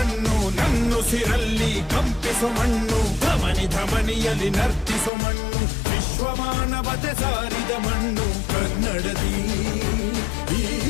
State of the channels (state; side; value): drops out; right; at 5.1 s